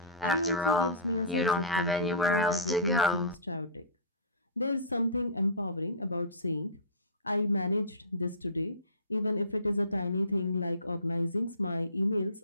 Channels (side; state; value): both; inverted; correlation -0.30